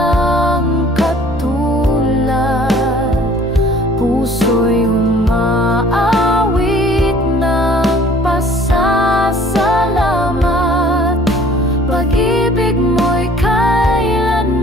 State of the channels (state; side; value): normal; both; correlation 0.53